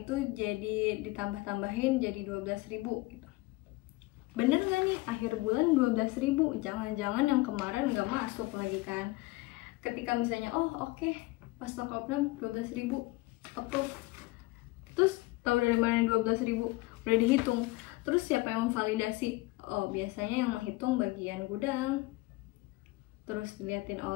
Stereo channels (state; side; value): quieter; right; 21.2 dB